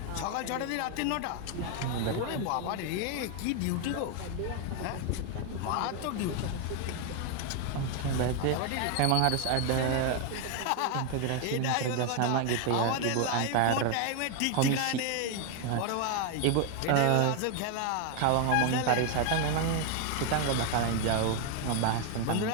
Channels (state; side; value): different; both; correlation 0.01